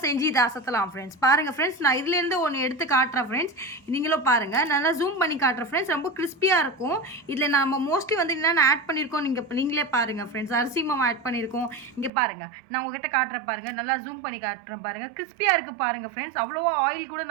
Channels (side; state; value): left; drops out; at 12.1 s